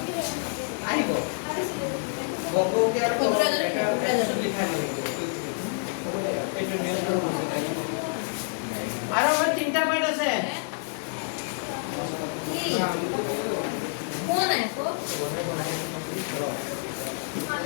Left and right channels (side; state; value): right; silent; 60 dB below the other